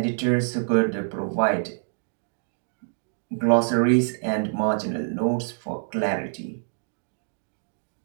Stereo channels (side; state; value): left; silent; digital silence